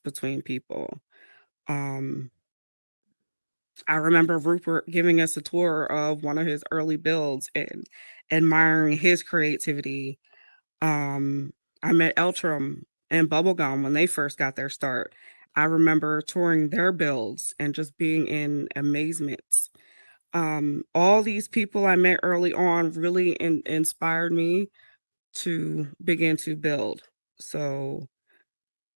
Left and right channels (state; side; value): inverted; both; correlation -1.00